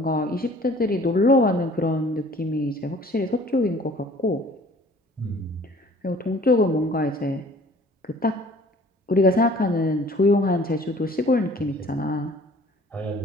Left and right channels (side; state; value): both; normal; correlation 0.52